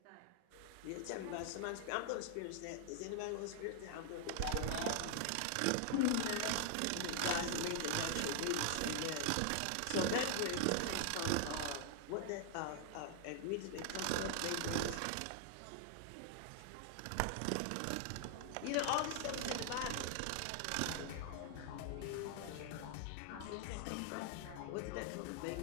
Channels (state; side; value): different; both; correlation 0.00